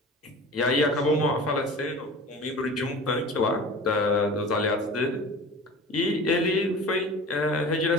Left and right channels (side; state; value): both; normal; correlation 0.38